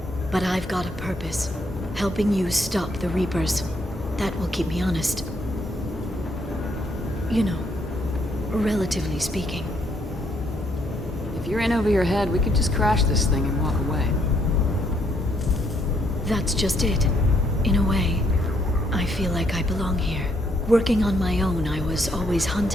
But I've got a purpose. Helping you stop the Reapers. That will keep me honest. You know, relatively speaking. If you're in over your head, we could just crash this thing and walk away. That's just it. In a way, I feel like I belong here. Working on my own, I was always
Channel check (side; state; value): both; normal; correlation 0.71